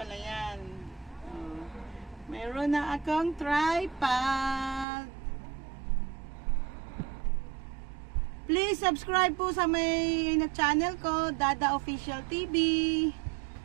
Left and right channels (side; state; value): left; drops out; at 4.9 s